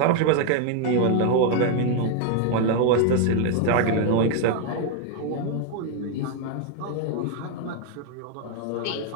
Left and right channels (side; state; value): both; different; correlation 0.00